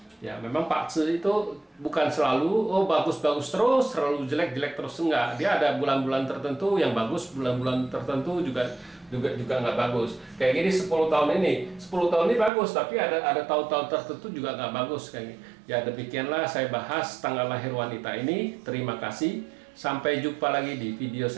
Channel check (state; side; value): drops out; left; at 12.5 s